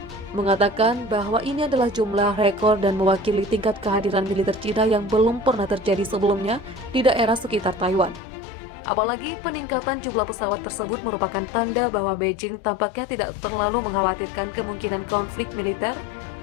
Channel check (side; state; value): right; drops out; at 8.2 s